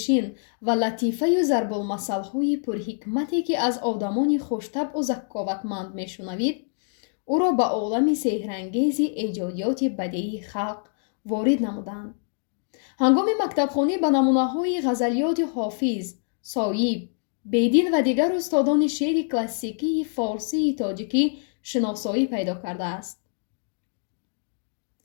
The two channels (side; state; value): right; silent; digital silence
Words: ва латифаю зарбулмасалҳои пурҳикмате, ки аз одамони хуштабъу закковатманд мешунавид, ӯро ба олами сеҳрангези эҷодиёти бадеии халқ ворид намуданд. ҳангоми мактабхонӣ ба намунаҳои ғазалиёти Ҳофиз, Соиб, Бедил ва дигар устодони шеъри классикии форсии тоҷикӣ шиносоӣ пайдо кардааст.